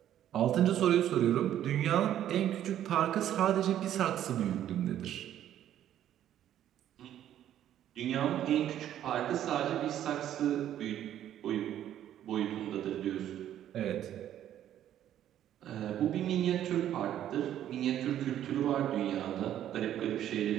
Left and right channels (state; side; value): quieter; left; 11.3 dB